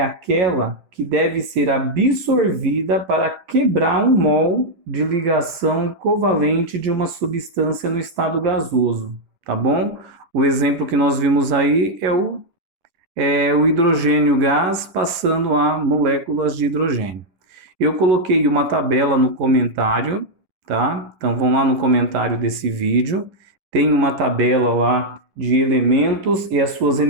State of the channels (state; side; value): late; left; 11 ms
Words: aquela que deve ser absorvida para quebrar um mol de ligação covalente de uma substância no estado gasoso, tá bom? O exemplo que nós vimos aí é o hidrogênio gás passando a moléculas de hidrogênio. Eu coloquei uma tabela no comentário, tá? Então, vão lá no comentário desse vídeo, tem uma tabela lá de elementos e as suas